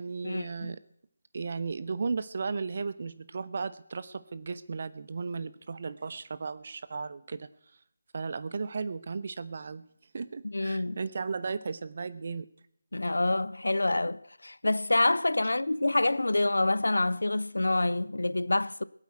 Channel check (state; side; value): inverted; both; correlation -0.96